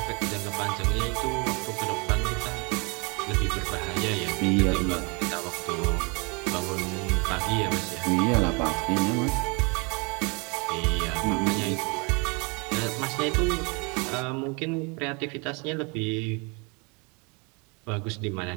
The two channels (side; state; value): left; quieter; 30.8 dB